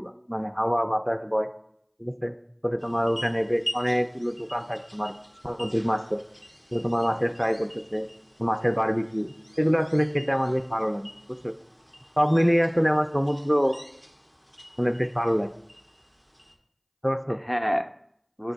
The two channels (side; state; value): both; identical; correlation 1.00